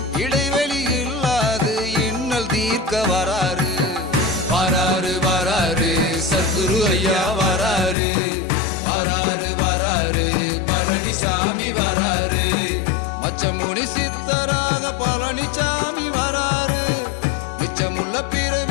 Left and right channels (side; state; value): right; drops out; at 8.0 s